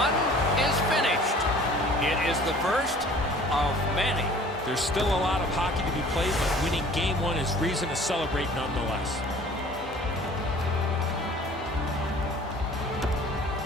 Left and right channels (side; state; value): both; normal; correlation 0.49